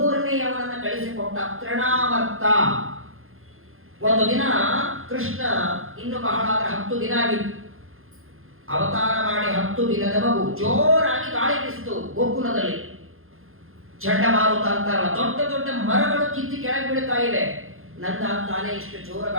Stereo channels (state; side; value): late; left; 0.60 ms